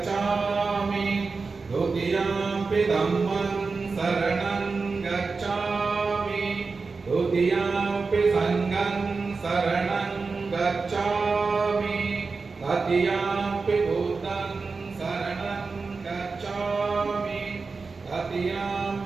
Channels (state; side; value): quieter; left; 4.4 dB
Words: ದ್ವಿತೀಯಂಪಿ ಧಮ್ಮಂ ಶರಣಂ ಗಚ್ಛಾಮಿ ದ್ವಿತೀಯಂಪಿ ಸಂಘಂ ಶರಣಂ ಗಚ್ಛಾಮಿ ತೃತೀಯಂಪಿ ಬುದ್ಧಂ ಶರಣಂ ಗಚ್ಛಾಮಿ